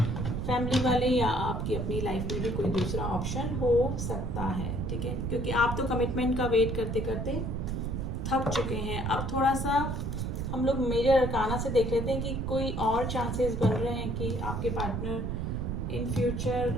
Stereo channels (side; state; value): right; noise; rumble, 2 dB below the sound